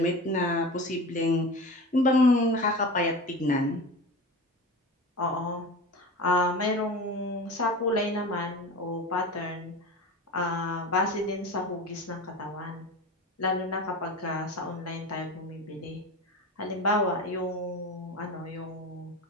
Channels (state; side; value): normal; both; correlation 0.30